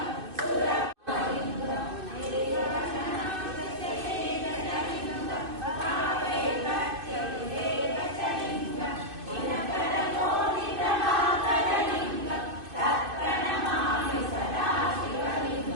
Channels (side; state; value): left; late; 2.6 ms